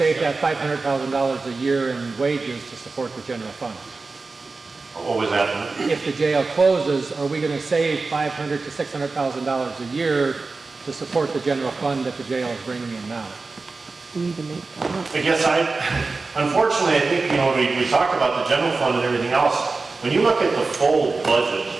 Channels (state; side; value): quieter; left; 3.9 dB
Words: that $500,000 a year in wages to support the general fund? What was that? If the jail closes, are we going to save $500,000 to $600,000 a year to support the general fund that the jail is bringing in now? We need to make that up. I guess unfortunately, I think, we talk about the general fund and everything else. When you look at the full budget